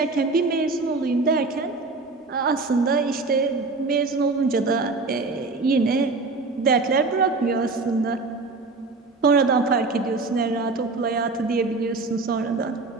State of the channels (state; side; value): quieter; left; 3.7 dB